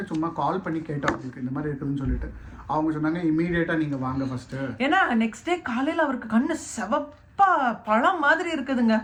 சும்மா கால் பண்ணி கேட்டோம் அவங்களுக்கு இந்த மாதிரி இருக்குதுன்னு சொல்லிட்டு. அவங்க சொன்னாங்க இமீடியட்டாக நீங்கள் வாங்க ஃபர்ஸ்ட்டு. ஏன்னா நெக்ஸ்ட் டே காலையில் அவருக்கு கண்ணு செவப்பா பழம் மாதிரி இருக்குதுங்க.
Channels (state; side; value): identical; both; correlation 1.00